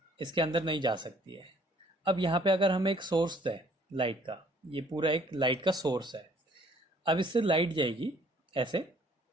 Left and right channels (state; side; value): normal; both; correlation 0.59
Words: इसके अंदर नहीं जा सकती है। अब यहाँ पे अगर हम एक सोर्स दें लाइट का, ये पूरा एक लाइट का सोर्स है। अब इससे लाइट जाएगी ऐसे,